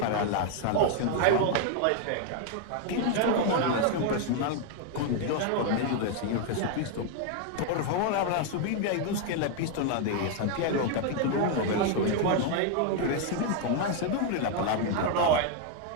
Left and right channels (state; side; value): different; both; correlation 0.00